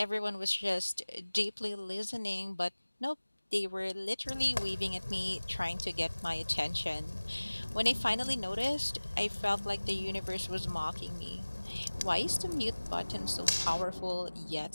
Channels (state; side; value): inverted; both; correlation -1.00